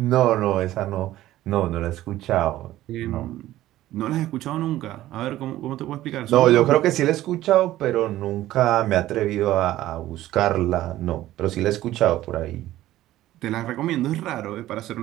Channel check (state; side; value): quieter; left; 14.8 dB